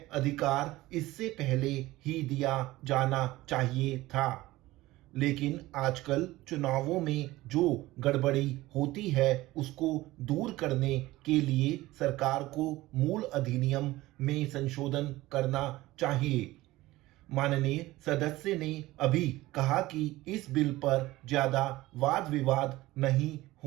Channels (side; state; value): left; quieter; 18.0 dB